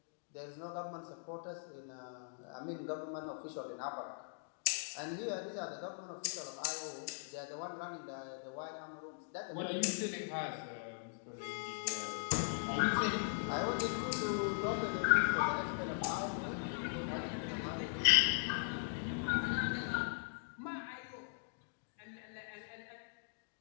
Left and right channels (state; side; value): silent; right; digital silence